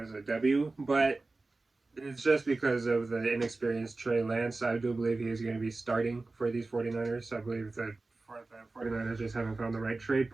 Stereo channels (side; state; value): left; quieter; 3.4 dB